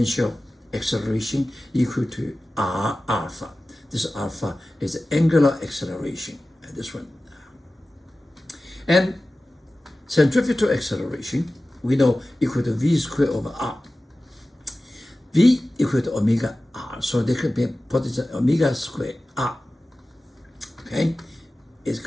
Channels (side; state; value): both; normal; correlation 0.96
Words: acceleration equal to r alpha. This alpha is the angular acceleration, this one. And centrifugal acceleration, we know equal to v squared over r. V equal to omega r, so they could be put as omega squared r, okay? It's